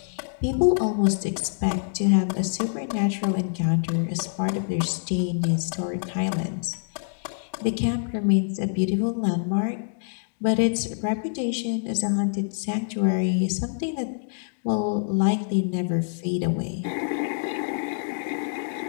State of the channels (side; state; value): right; silent; digital silence